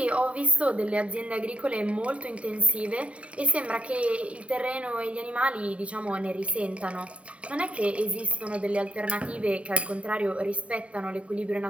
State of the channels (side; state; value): left; late; 0.064 ms